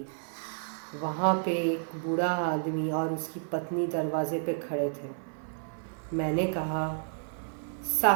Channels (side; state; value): left; silent; 57 dB below the other